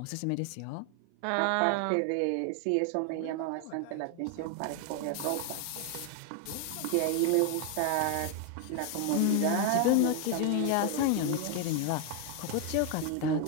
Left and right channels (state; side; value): different; both; correlation 0.01